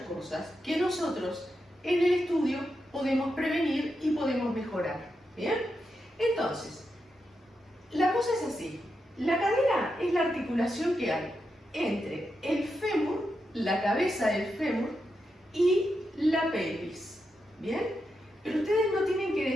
cosas que nosotros en el estudio podemos prevenir y podemos mejorar. ¿Bien? Entonces, la cosa es así. La cadera es la articulación que hay entre el fémur, la cabeza del fémur y la pelvis. ¿Bien? Pero ustedes no tienen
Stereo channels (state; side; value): normal; both; correlation 0.86